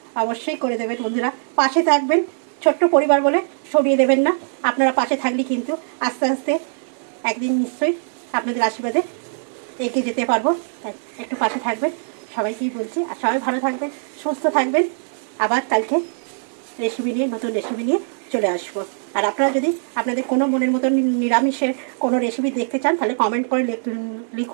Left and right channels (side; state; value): left; silent; digital silence